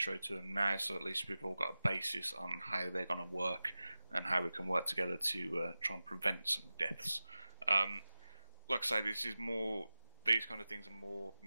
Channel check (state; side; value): inverted; both; correlation -0.96